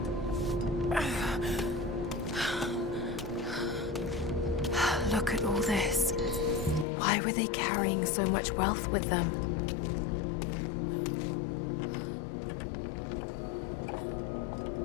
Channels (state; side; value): drops out; right; at 6.9 s